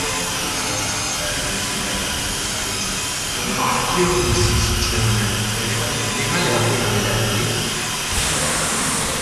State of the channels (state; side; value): identical; both; correlation 1.00